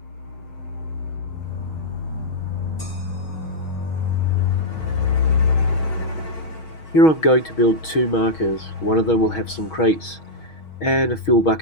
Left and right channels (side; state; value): right; late; 6.3 ms